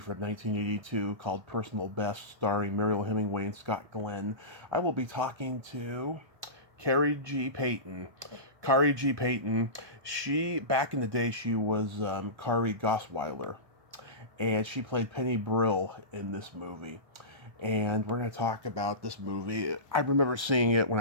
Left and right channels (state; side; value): late; left; 1.2 ms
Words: 1982 called Personal Best, starring Mariel Hemingway and Scott Glenn. I will be talking to Kari G. Peyton. Kari G. Peyton, back in the day, she was Kari Gosswiller, and she played Penny Brill in this movie. And we're going to talk about this movie. I remember seeing it when